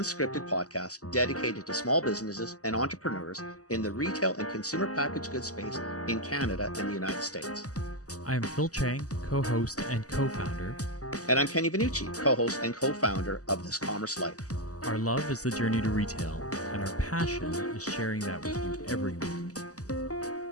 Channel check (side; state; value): right; late; 0.67 ms